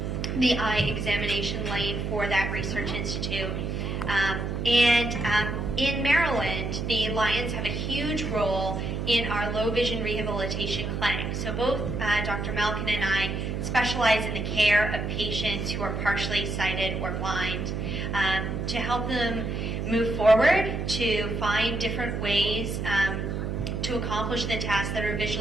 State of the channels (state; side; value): noise; right; hum, 2 dB below the sound